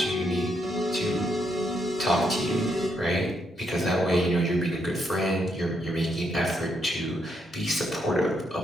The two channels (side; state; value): both; normal; correlation 0.77